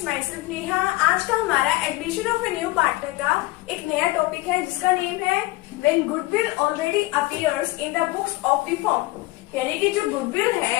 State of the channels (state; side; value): quieter; right; 19.7 dB